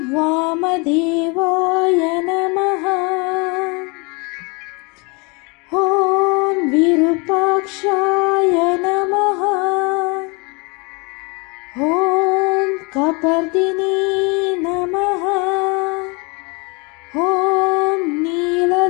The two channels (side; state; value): right; quieter; 29.8 dB